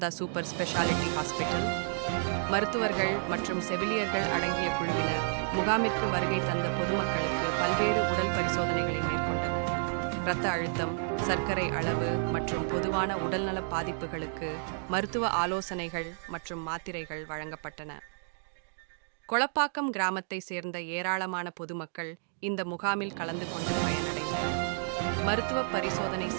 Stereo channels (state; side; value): silent; left; digital silence